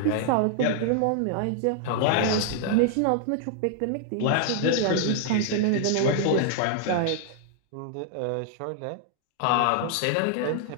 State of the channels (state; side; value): different; both; correlation -0.01